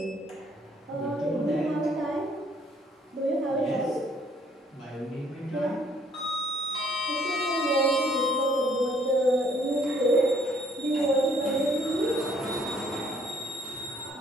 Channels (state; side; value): normal; both; correlation 0.63